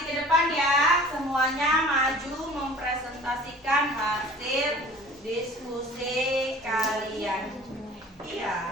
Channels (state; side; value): normal; both; correlation 0.46